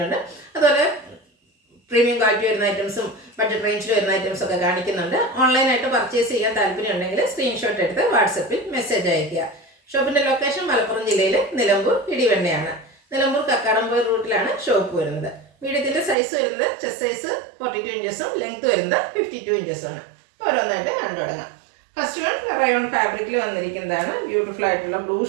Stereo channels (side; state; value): left; drops out; at 16.2 s